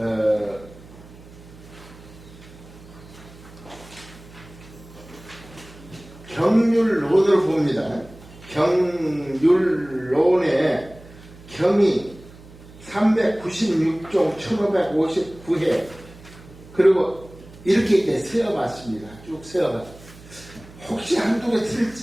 경률론을 봅니다. 경률론의 경이 396종 1559회 그리고 이렇게 이제 세어봤습니다. 쭉 세어봤습니다. 혹시 한두 개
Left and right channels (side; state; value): right; noise; hum, 20 dB below the sound